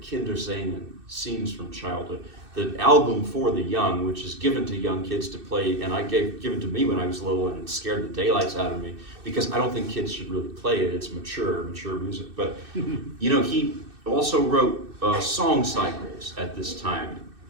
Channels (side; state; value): left; late; 2.6 ms